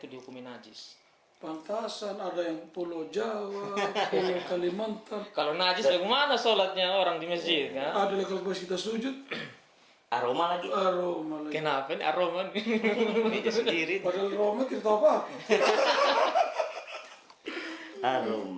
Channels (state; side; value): identical; both; correlation 1.00